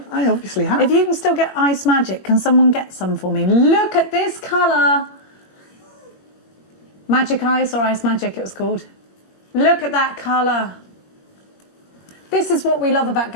I obviously have. If you can still get Ice Magic, can someone get some for me? Look at this colour. Magic Ice or Ice Magic it was called. Look at that colour. This is what we love about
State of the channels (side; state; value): right; late; 21 ms